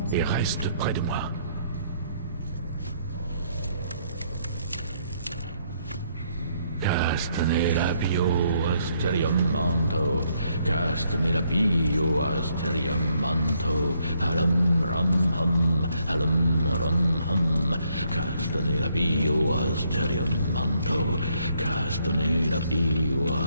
et reste près de moi. Castanera bio asterium manto, Castanera bio asterium manto, alum ram hum, alum ram hum, Castanera bio asterium manto, Castanera bio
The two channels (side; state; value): both; inverted; correlation -0.72